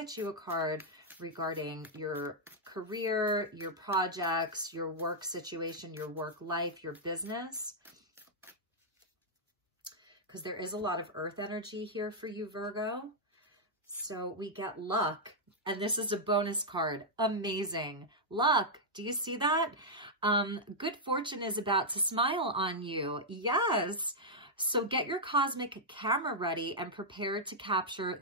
you a card regarding your career, your projects, your work situation, your work life, your business. Because there is a lot of earth energy here for you, Virgo. So we get luck, and this is a bonus card. Amazing. Luck. Do you see that? Good fortune is about to smile on you. Yes. So get your cosmic camera ready and prepare to capture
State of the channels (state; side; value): normal; both; correlation -0.06